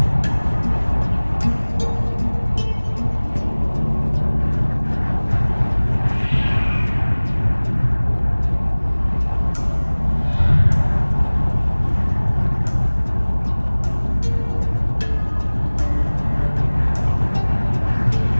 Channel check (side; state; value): both; inverted; correlation -1.00